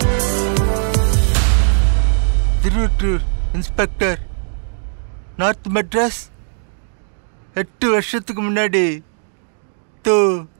Tiruvottiyur inspector, north Madras. 8 வருஷத்துக்கு முன்னாடி தோ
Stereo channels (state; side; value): silent; left; digital silence